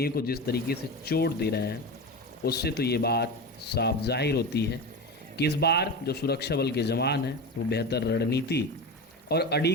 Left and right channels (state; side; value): normal; both; correlation 0.24